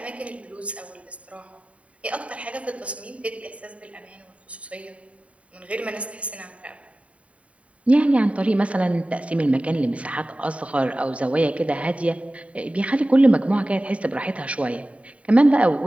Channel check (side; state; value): left; late; 0.065 ms